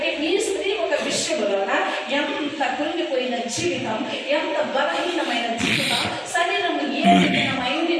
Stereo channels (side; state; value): both; identical; correlation 1.00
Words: ఈ స్త్రీ ఒక విషయంలోన ఎంత కృంగిపోయిన జీవితం, ఎంత బలహీనమైన జీవితం, శరీరం ఏ